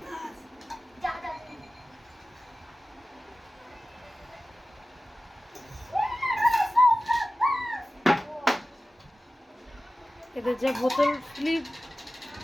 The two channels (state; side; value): normal; both; correlation 0.96